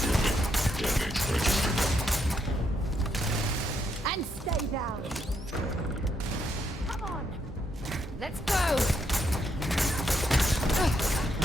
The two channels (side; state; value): both; normal; correlation 0.77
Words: Damage registered. And stay down. Come on. Let's go!